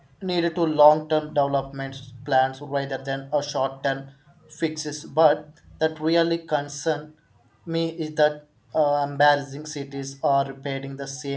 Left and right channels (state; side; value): identical; both; correlation 1.00